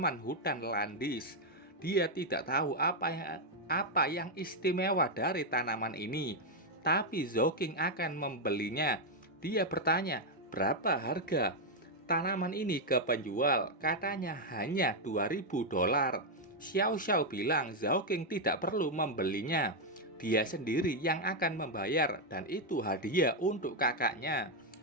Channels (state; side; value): normal; both; correlation 0.01